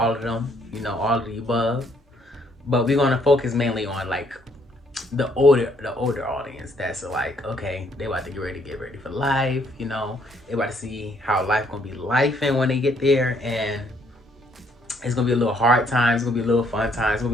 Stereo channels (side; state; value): both; normal; correlation 0.68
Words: of them, all of the above. But we're gonna focus mainly on like the older audience that's like, okay, they about to get ready for life, they about to see how life gonna be life and when they get there, and it's gonna be a little hard times, it's gonna be a little fun times, it's